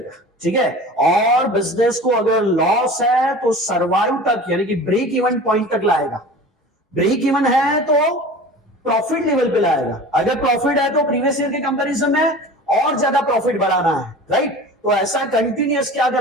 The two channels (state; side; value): normal; both; correlation 0.38